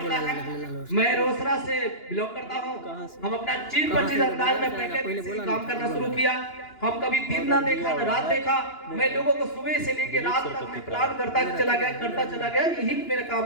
है, मैं रोसड़ा से बिलोंग करता हूँ। हम अपना 25 अंदाज में पहले से काम करना शुरू किया। हम कभी दिन ना देखा ना रात देखा, मैं लोगों को सुबह से लेके रात तक मैं प्लान करता चला गया, यही मेरा काम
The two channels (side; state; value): right; late; 2.9 ms